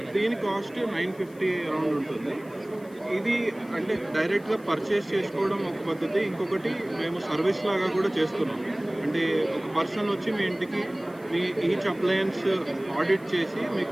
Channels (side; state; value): left; noise; hiss, 27 dB below the sound